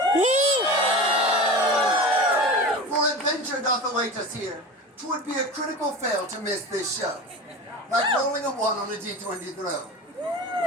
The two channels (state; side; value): normal; both; correlation 0.31